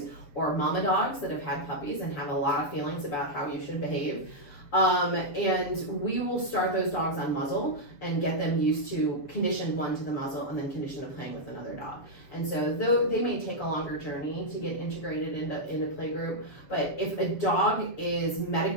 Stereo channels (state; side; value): late; right; 7.3 ms